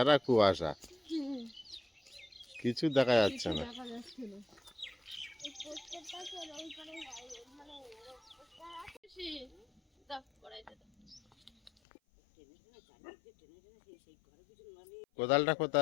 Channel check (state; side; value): drops out; right; at 11.7 s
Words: কুয়াশা, কিছু দেখা যাচ্ছে না। কোদালটা